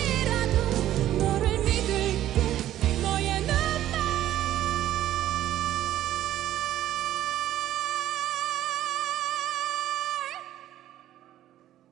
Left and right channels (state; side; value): quieter; left; 12.8 dB